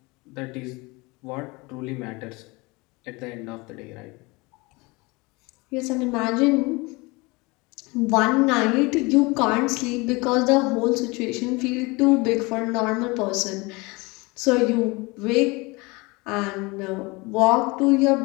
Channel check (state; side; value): quieter; right; 25.3 dB